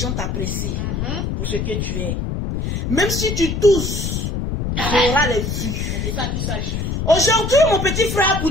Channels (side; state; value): left; noise; rumble, 2 dB below the sound